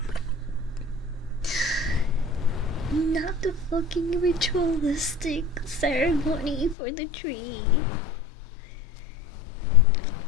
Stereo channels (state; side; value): drops out; right; at 6.8 s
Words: Not the fucking ritualistic ceremony for the tree.